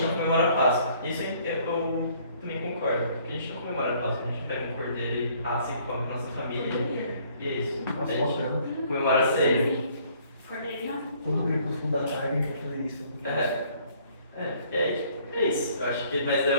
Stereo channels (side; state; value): both; inverted; correlation -0.61